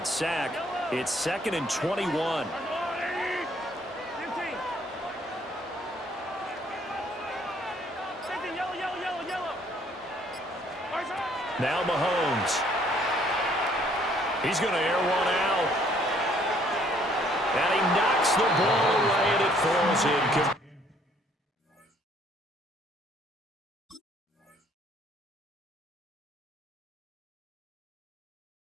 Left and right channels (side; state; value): both; normal; correlation 0.63